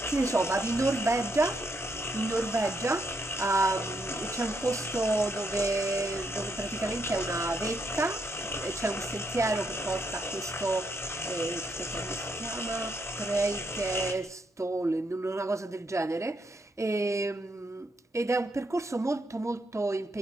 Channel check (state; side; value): normal; both; correlation 0.78